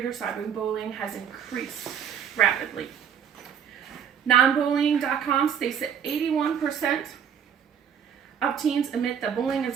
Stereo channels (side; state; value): left; quieter; 7.9 dB